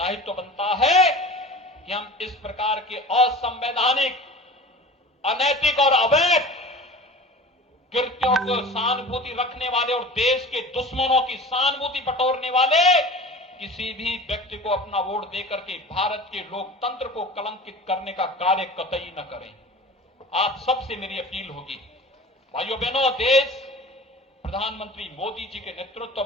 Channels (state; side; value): normal; both; correlation 0.38